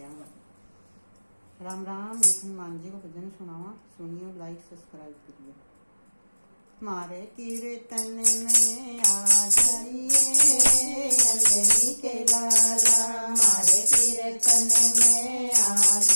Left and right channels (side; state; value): both; inverted; correlation -1.00